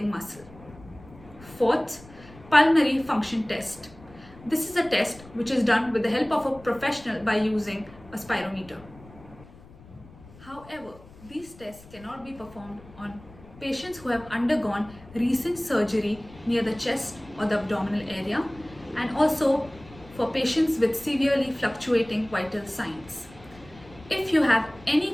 muscle. Fourth, pulmonary function test. This is a test which is done with the help of a professional by using a spirometer. However, these tests cannot be performed on patients who have undergone recent surgery near the chest or the abdominal area, and also for patients with severely fluctuating vital signs. If you have any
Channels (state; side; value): noise; left; rumble, 21 dB below the sound